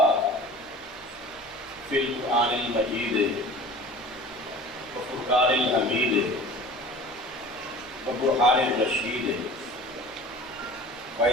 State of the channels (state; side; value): normal; both; correlation 0.41